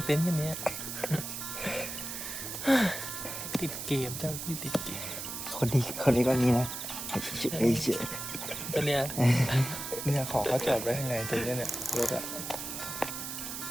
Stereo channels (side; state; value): right; noise; hiss, 6 dB below the sound